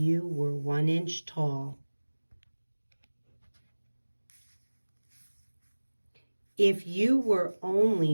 were 1 inch tall. If you were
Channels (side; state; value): both; inverted; correlation -1.00